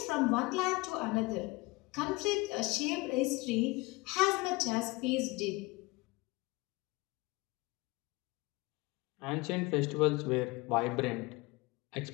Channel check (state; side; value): quieter; right; 23.4 dB